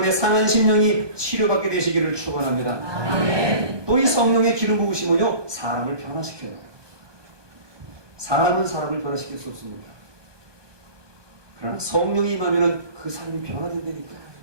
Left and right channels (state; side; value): late; left; 1.2 ms